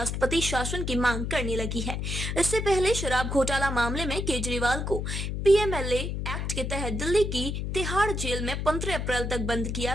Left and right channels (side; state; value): left; noise; hum, 3 dB below the sound